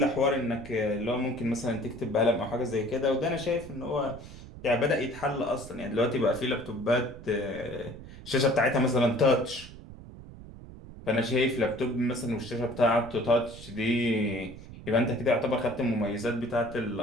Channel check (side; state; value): right; noise; rumble, 15 dB below the sound